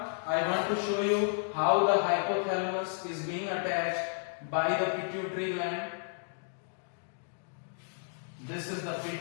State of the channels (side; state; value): right; silent; 56 dB below the other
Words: I want to show you how the hypothalamus is being attached by the pituitary gland. This is the